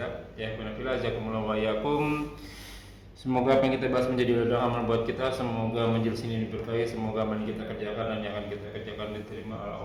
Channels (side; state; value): both; identical; correlation 1.00